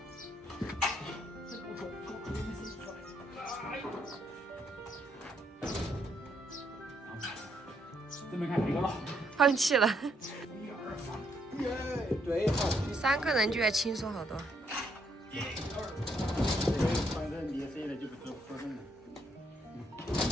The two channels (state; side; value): normal; both; correlation 0.73